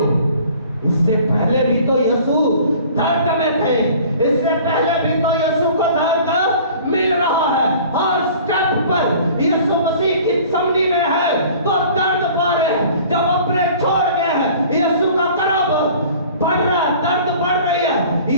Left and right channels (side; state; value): both; inverted; correlation -0.48